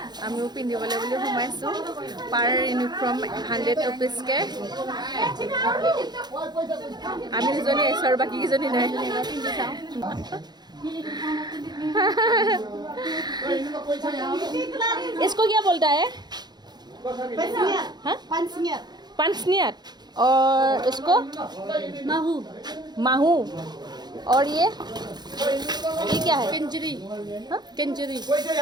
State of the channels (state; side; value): late; left; 0.20 ms